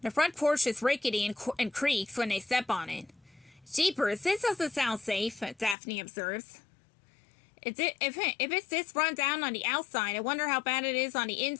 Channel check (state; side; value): drops out; right; at 5.8 s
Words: The front porch is rickety and creaks when they step on it. Jeepers, this doesn't sound safe, Daphne observes. If it's this run down on the outside, I wonder how bad it is on the